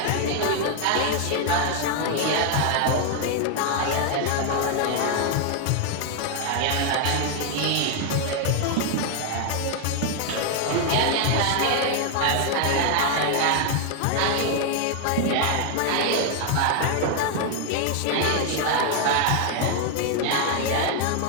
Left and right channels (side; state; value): both; different; correlation 0.00